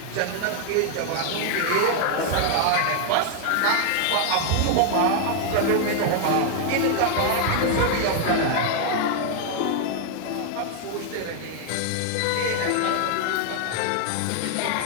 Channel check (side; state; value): both; different; correlation 0.00